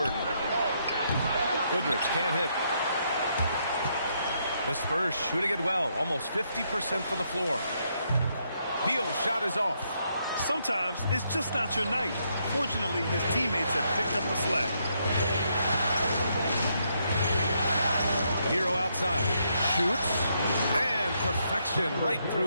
Goodrich can't hit. The Spurs shooting it well, almost 50% from the floor. Beal's shot is off. Sometimes it's just not your night. Fortunately, his teammates have picked up the slack. Hero outside. Shoots. And perfection right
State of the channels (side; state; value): both; inverted; correlation -0.76